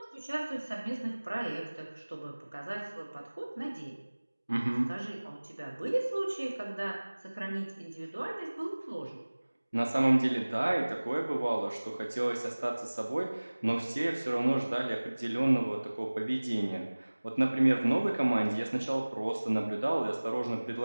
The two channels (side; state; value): both; inverted; correlation -1.00